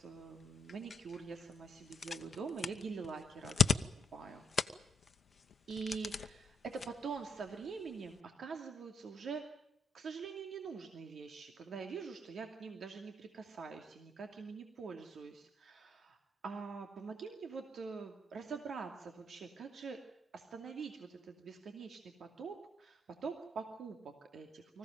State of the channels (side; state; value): both; normal; correlation 0.73